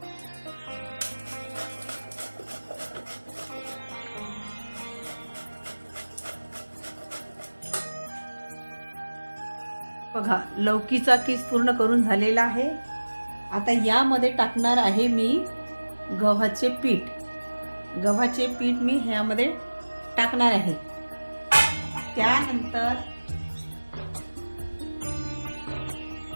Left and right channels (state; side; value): inverted; both; correlation -1.00